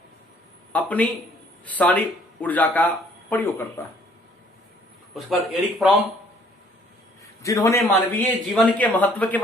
अपनी सारी ऊर्जा का प्रयोग करता है। उसके बाद एरिक फ्रॉम, जिन्होंने मानवीय जीवन के महत्व के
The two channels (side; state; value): both; normal; correlation 0.60